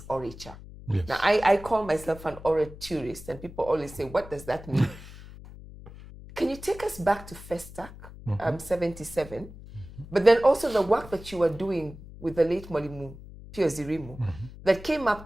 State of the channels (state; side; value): noise; left; hum, 16 dB below the sound